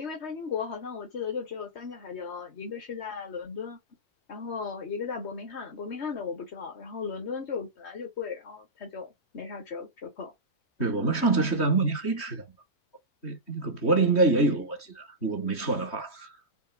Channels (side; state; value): right; late; 3.2 ms